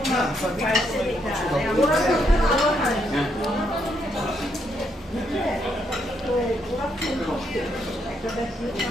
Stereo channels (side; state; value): both; normal; correlation 0.76